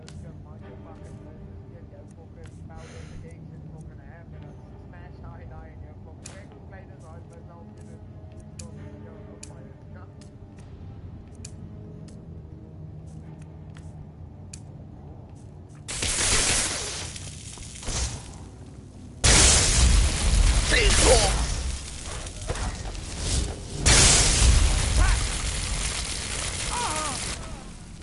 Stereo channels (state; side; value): identical; both; correlation 1.00